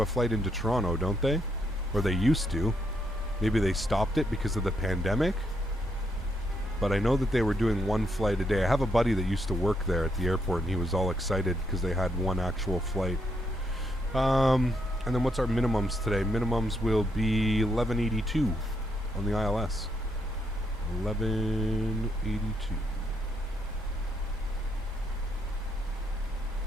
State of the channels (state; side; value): normal; both; correlation 0.76